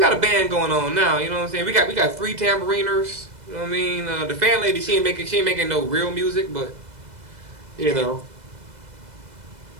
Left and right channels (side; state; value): left; late; 2.0 ms